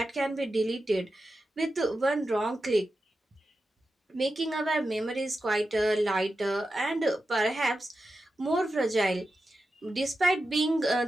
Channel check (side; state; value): both; normal; correlation 0.91